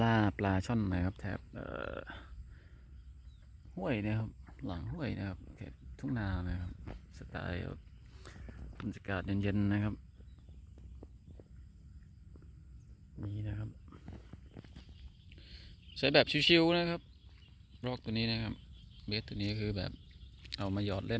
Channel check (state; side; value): identical; both; correlation 1.00